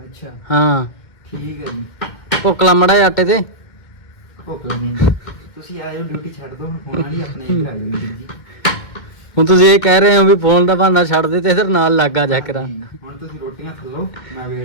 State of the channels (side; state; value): right; late; 2.1 ms